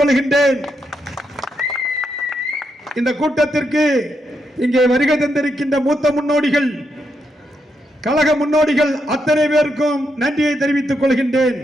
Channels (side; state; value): both; normal; correlation 0.81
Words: இந்த கூட்டத்திற்கு இங்கே வருகை தந்திருக்கின்ற மூத்த முன்னோடிகள், கழக முன்னோடிகள் அத்தனை பேருக்கும் நன்றியை தெரிவித்துக் கொள்கின்றேன்.